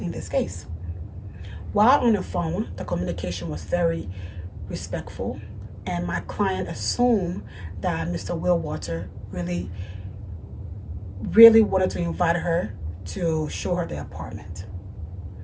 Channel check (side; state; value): both; identical; correlation 1.00